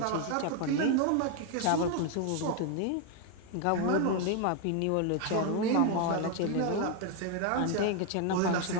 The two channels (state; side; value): different; both; correlation 0.01